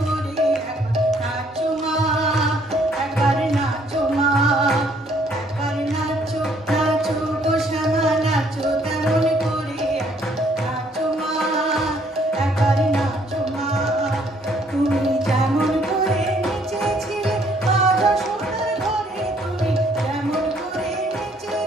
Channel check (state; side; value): normal; both; correlation 0.65